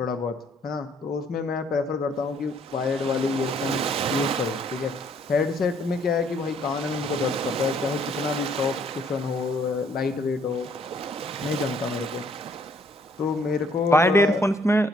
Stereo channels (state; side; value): normal; both; correlation 0.64